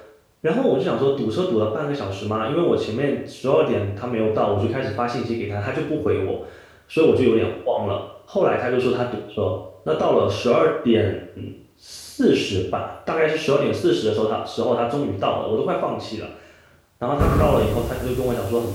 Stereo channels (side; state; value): both; identical; correlation 1.00